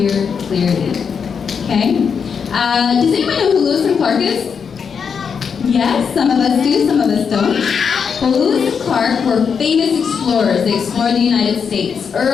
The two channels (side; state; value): right; quieter; 6.4 dB